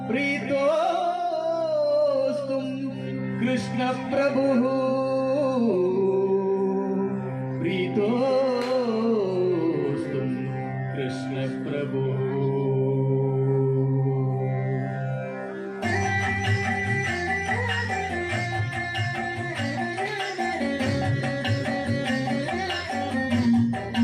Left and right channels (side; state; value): both; identical; correlation 1.00